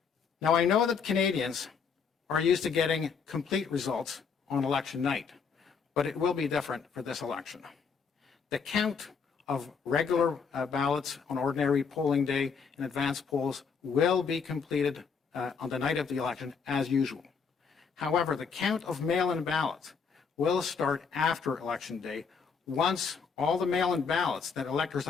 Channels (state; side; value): quieter; right; 5.8 dB